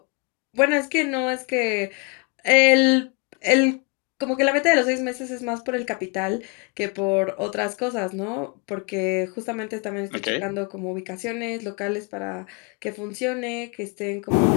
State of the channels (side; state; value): right; quieter; 32.1 dB